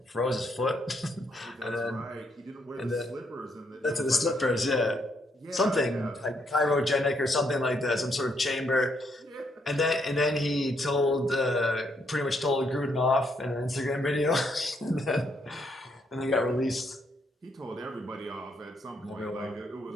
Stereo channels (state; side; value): normal; both; correlation 0.74